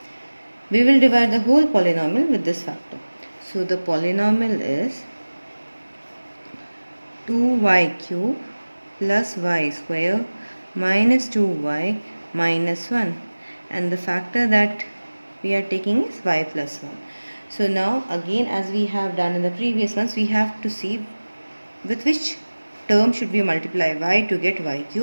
We will divide the whole polynomial with this factor. So the polynomial is 2y cube plus y square minus 2y minus 1. And the factor that we are taking is y plus 1. So now again, as we have done in the previous ones, we have to see with which term should we multiply y to get y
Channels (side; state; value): both; inverted; correlation -1.00